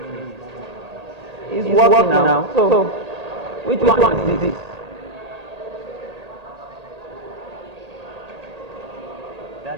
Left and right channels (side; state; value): left; late; 1.8 ms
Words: It's working now. So, which one is this?